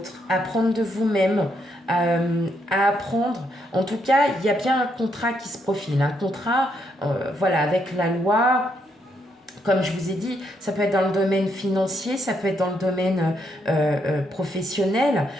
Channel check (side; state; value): both; normal; correlation 0.76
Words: apprendre de vous-même, à apprendre. En tout cas, il y a bien un contrat qui se profile, un contrat, voilà, avec la loi. Comme je vous ai dit, ça peut être dans le domaine financier, ça peut être dans le domaine professionnel.